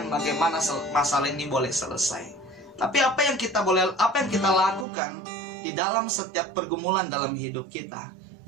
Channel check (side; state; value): left; drops out; at 4.9 s